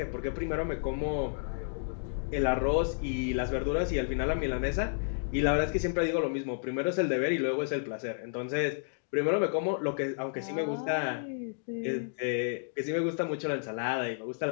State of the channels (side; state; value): right; silent; digital silence